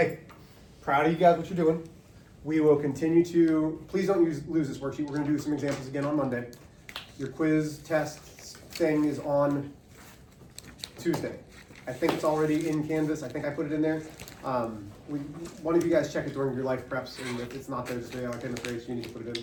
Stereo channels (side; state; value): both; identical; correlation 1.00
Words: proud of you guys, what you're doing. We will continue to, please don't lose this worksheet. We're going to do some examples again on Monday. Your quiz test thing is on Tuesday. I think it's already in Canvas. I think I put it in there. One of you guys check it during your life preps, and if it's not there, just say, oh, I'm afraid you need to put it